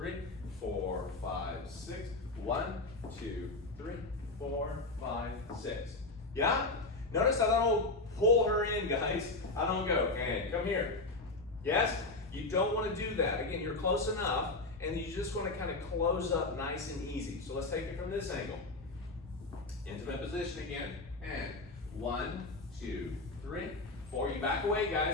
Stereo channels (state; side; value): quieter; right; 3.2 dB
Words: 4, 5, 6, 1, 2, 3, 4, 5, 6. Yeah? Notice I don't pull her in, guys. I don't go, and come here. Yes? You don't want to do that. Again, you're close enough, and you just want to kind of close up nice and easy. So let's take it from this angle. Intimate position again, and 1, 2, 3, 4. You back away,